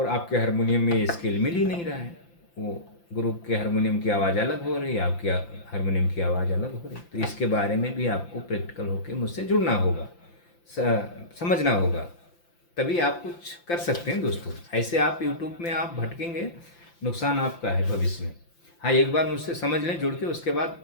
आपके हारमोनियम में ये स्केल मिल ही नहीं रहा है। वो गुरु के हारमोनियम की आवाज़ अलग हो रही है, आपकी हारमोनियम की आवाज़ अलग हो रही है। तो इसके बारे में भी आपको प्रैक्टिकल होकर मुझसे जुड़ना होगा, समझना होगा, तभी आप कुछ कर सकते हैं दोस्तों। ऐसे आप यूट्यूब में आप भटकेंगे, नुकसान आपका है भविष्य में। हाँ, एक बार मुझसे समझ लें जुड़ के, उसके बाद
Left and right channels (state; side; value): late; right; 5.8 ms